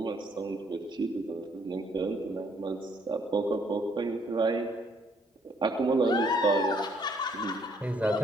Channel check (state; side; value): normal; both; correlation 0.66